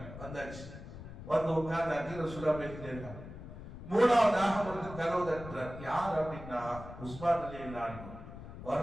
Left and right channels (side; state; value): left; noise; rumble, 12 dB below the sound